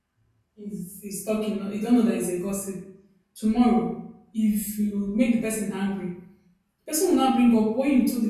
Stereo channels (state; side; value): identical; both; correlation 1.00